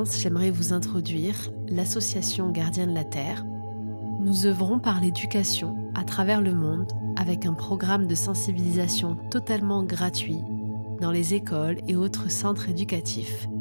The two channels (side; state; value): both; inverted; correlation -1.00